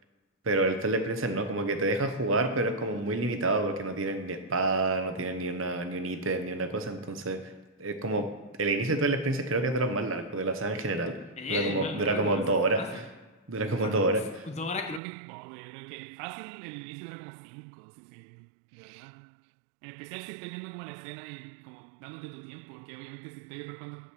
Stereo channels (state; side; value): drops out; left; at 15.0 s